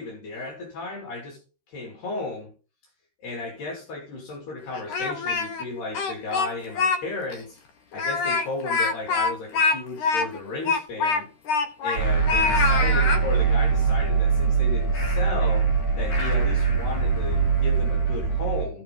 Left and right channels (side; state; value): right; late; 13 ms